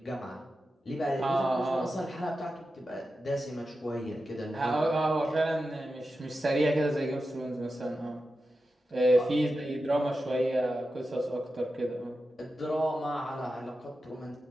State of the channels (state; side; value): normal; both; correlation 0.91